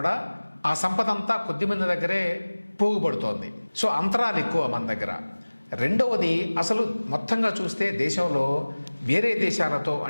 ఆ సంపద అంతా కొద్ది మంది దగ్గరే పోగుపడుతోంది. సో అంతరాలు ఎక్కువ మన దగ్గర. రెండవది, అసలు మొత్తంగా చూస్తే దేశంలో వేరే దేశాలతో,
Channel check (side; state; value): both; inverted; correlation -1.00